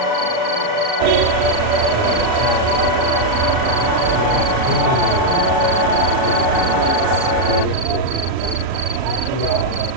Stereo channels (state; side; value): late; left; 39 ms